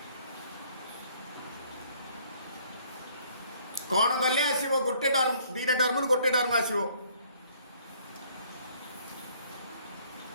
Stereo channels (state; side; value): inverted; both; correlation -0.60